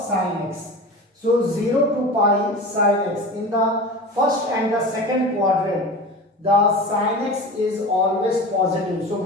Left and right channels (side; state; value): both; normal; correlation 0.32